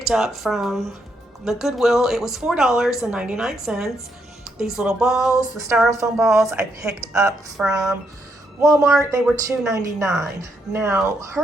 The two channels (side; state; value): both; normal; correlation 0.77